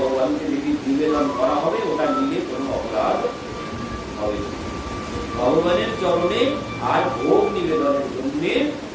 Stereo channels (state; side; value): identical; both; correlation 1.00